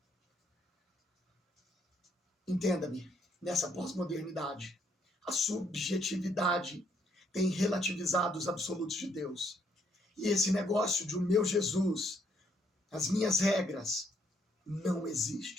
Entenda-me, nessa pós-modernidade, a subjetividade tem relativizado os absolutos de Deus. E esse negócio de o meu Jesus, as minhas regras, não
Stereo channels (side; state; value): both; normal; correlation 0.71